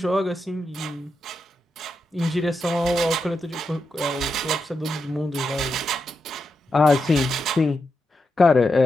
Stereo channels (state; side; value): normal; both; correlation 0.86